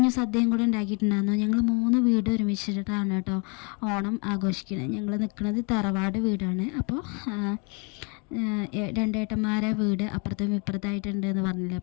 സദ്യയും കൂടെ ഉണ്ടാക്കിയിട്ടുണ്ടായിരുന്നു. ഞങ്ങൾ 3 വീട് ഒരുമിച്ചിട്ടാണ് കേട്ടോ ഓണം ആഘോഷിക്കുന്നത്. ഞങ്ങൾ നിൽക്കുന്നത് തറവാട് വീടാണ്. അപ്പോൾ 2 ഏട്ടന്മാരെ വീട് അപ്പുറത്തും ഇപ്പുറത്തായിട്ടുണ്ട് എന്ന് പറഞ്ഞില്ലേ.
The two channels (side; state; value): right; quieter; 33.7 dB